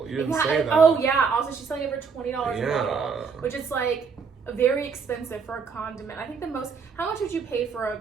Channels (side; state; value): left; quieter; 5.6 dB